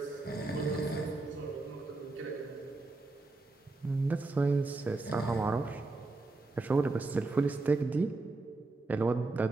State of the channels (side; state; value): left; quieter; 3.3 dB